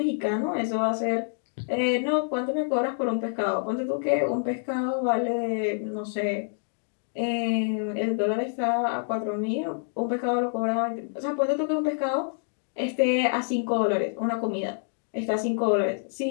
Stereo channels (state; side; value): silent; right; digital silence